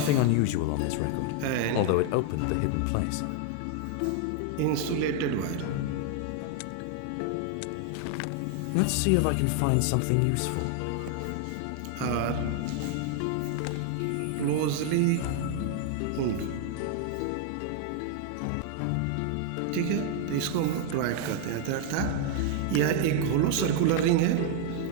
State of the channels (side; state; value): both; different; correlation 0.00